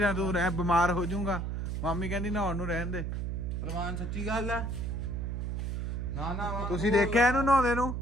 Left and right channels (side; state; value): right; noise; hum, 2 dB below the sound